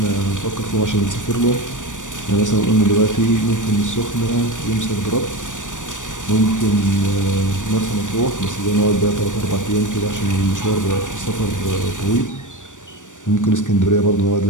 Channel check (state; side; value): late; right; 0.87 ms